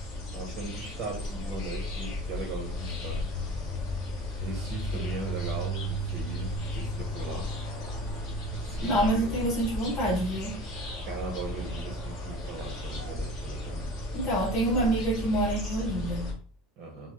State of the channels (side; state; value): both; normal; correlation 0.40